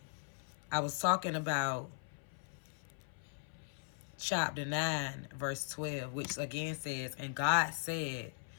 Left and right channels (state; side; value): silent; right; 52 dB below the other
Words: I was talking about chapter 9, verse 12, which again says, "And God said,